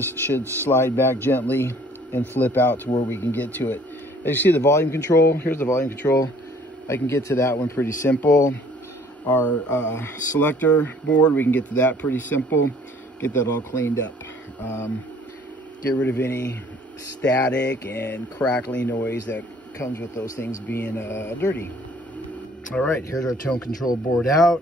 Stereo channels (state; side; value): normal; both; correlation 0.56